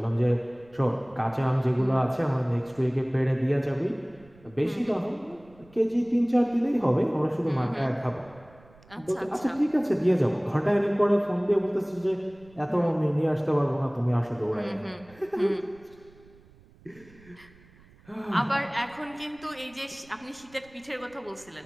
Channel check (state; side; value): noise; right; rumble, 26 dB below the sound